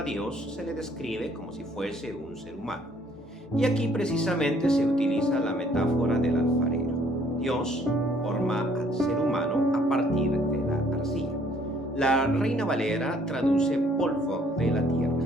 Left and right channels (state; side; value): normal; both; correlation 0.62